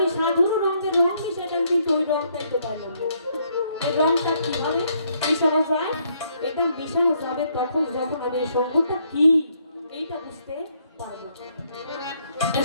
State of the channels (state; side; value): inverted; both; correlation -0.71